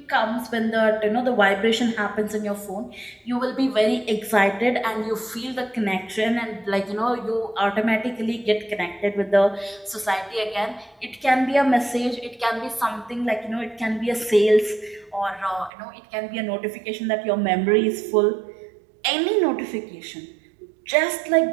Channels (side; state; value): left; drops out; at 15.7 s